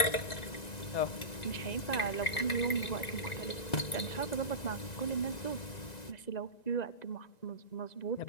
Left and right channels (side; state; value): right; late; 1.9 ms